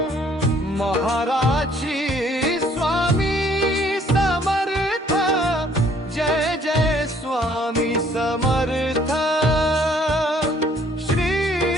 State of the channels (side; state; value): both; normal; correlation 0.62